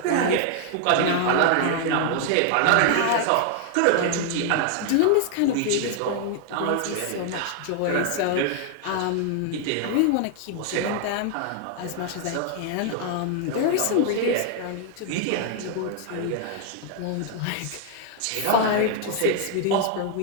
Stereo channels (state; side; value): different; both; correlation 0.00